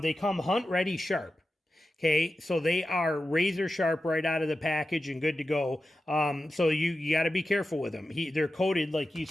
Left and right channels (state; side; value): normal; both; correlation 0.92